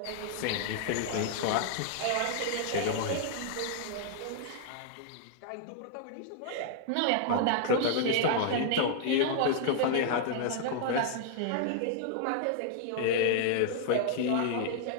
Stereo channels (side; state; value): both; different; correlation -0.01